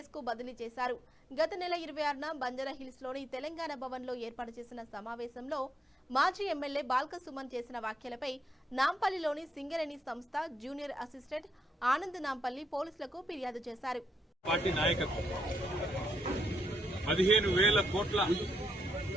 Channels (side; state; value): both; normal; correlation 0.79